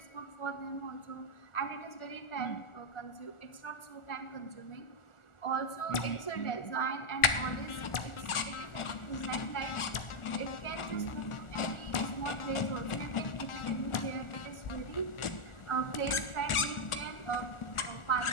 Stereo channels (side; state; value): right; late; 1.4 ms